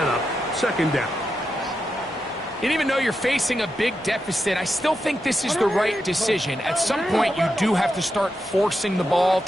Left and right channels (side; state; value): both; normal; correlation 0.87